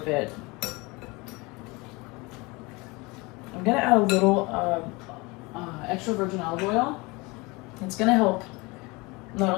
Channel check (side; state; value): right; quieter; 25.2 dB